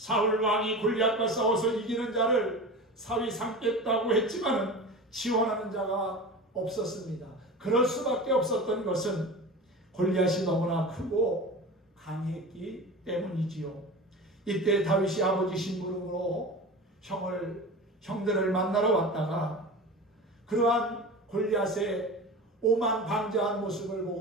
왕이 골리앗과 싸워서 이기는 자를 사위 삼겠다고 했지만 지원하는 자가 없었습니다. 그럴 수밖에 없었던 것은 골리앗이 너무나 크고 강했기 때문이지요. 이때 다윗이 아버지 심부름으로 형들을 만나러 왔다가 그러한 골리앗의 오만방자한 모습을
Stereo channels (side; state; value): both; normal; correlation 0.32